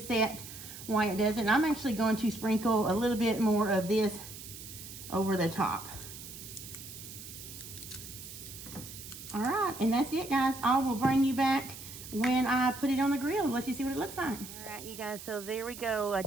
set while it does it. And I'm actually going to sprinkle a little bit more of this over the top. All right, and that's it, guys. I will bring you back when I put it on the grill and let you see what it looks like. All right, you guys, so there we go. I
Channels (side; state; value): right; noise; hiss, 13 dB below the sound